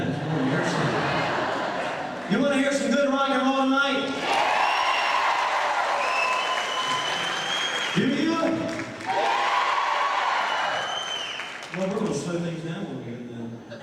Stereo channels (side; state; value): both; identical; correlation 1.00